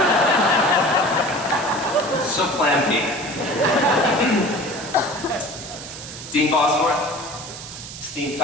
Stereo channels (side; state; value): right; noise; hiss, 12 dB below the sound